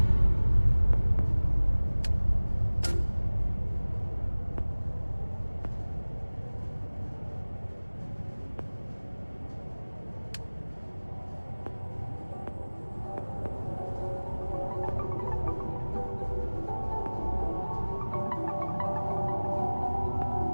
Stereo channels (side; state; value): both; inverted; correlation -1.00